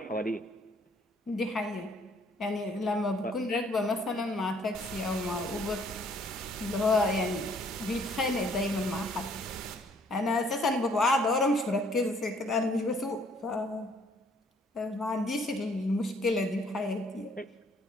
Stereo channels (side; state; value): both; normal; correlation 0.63